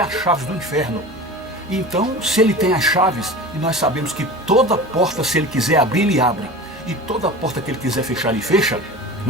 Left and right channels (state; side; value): noise; right; hum, 24 dB below the sound